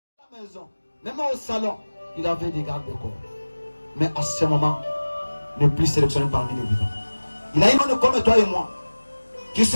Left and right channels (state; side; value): inverted; both; correlation -1.00